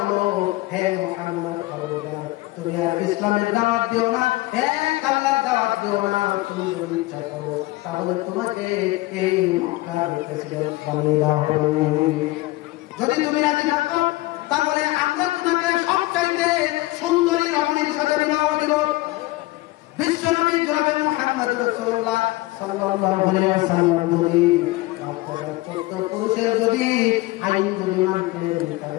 হে মুহাম্মদ খবরদার, তুমি আর ইসলামের দাওয়াত দিও না, এক আল্লাহর দাওয়াত দিও না। তুমি যদি ইচ্ছা করো তাহলে তোমাকে এই মক্কার প্রেসিডেন্ট বানিয়ে দেওয়া হবে। যদি তুমি রাজি থাকো তাহলে আমরা তোমাকে সবচাইতে সুন্দরী রমণীর সাথে বিবাহ দিব। বিশ্বনবী জনাবে মুহাম্মদ রাসূলুল্লাহ সাল্লাল্লাহু আলাইহি ওয়াসাল্লাম যদি আপনারা 14 পুরুষের যদি আইন যদি মানতেন,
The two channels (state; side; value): quieter; right; 19.9 dB